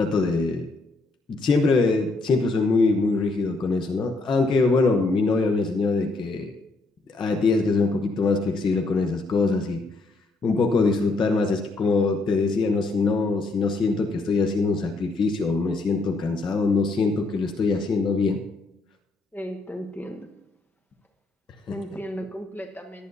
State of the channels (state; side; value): quieter; right; 3.3 dB